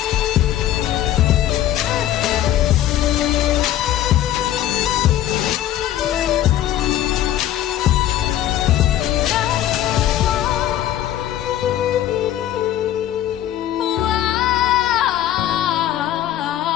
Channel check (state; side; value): quieter; right; 12.3 dB